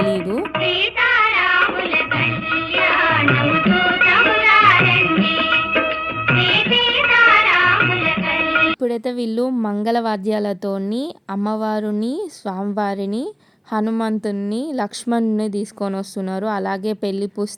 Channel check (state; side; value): identical; both; correlation 1.00